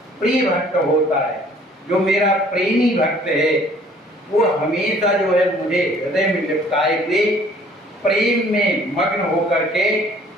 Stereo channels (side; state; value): both; normal; correlation 0.56